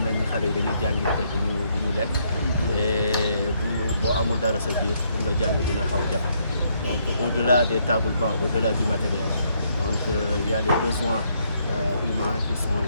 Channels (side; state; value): both; inverted; correlation -0.72